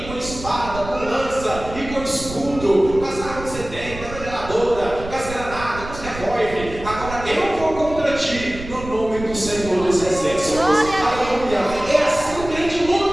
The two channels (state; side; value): noise; right; rumble, 12 dB below the sound